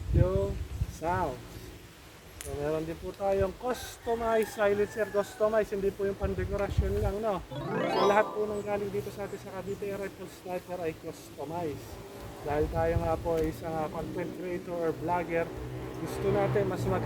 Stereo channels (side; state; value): both; identical; correlation 1.00